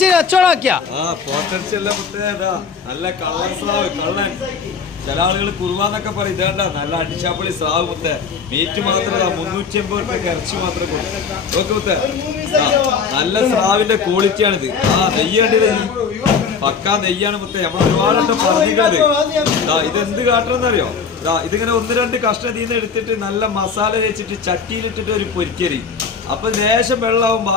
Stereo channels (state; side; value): quieter; right; 5.8 dB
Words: കച്ചവടമാക്കിയ നല്ല കള്ളൻ ചില ആളുകൾ കുറുവാന്നൊക്കെ പറയും ഇതേണ്ട നല്ല അടിച്ചാപ്പൊളി സ്രാവ് മുത്തേ മീറ്റ് മാത്രമല്ല 350 രൂപയ്ക്ക് ഇറച്ചി മാത്രമേ കൊടുക്കും മുത്തേ നല്ല സ്രാവിന്റെ ക്വാളിറ്റിയാണിത്. നെയ്യേണ്ടത് പക്കാ നെയ്യാണ് മുത്തേ. നമ്മൾ ഒരുപാട് പറഞ്ഞിട്ടുണ്ട് ഇതെന്ത് കാട്ടണമെന്നറിയോ? ഇതിങ്ങനെ 1-2 കഷ്ണം ഇതിന്ന് എടുത്തിട്ട് നല്ല മസാല വെച്ചിട്ട് ചട്ടിയിലിട്ടിട്ട് ഒരു പൊരിക്കരി, അപ്പൊ ലേശം വെള്ളമാവും,